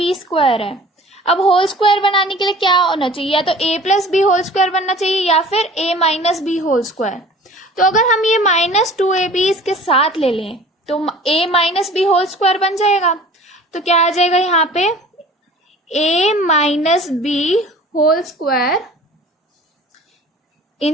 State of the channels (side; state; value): both; normal; correlation 0.45